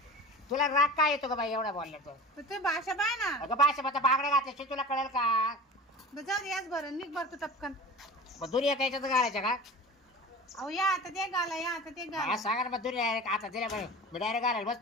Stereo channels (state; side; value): normal; both; correlation 0.35